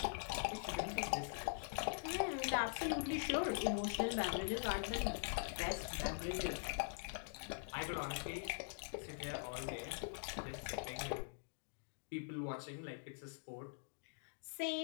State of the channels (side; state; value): right; silent; digital silence